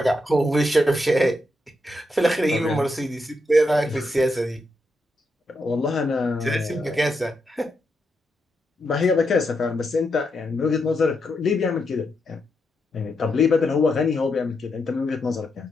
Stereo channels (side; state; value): both; normal; correlation 0.83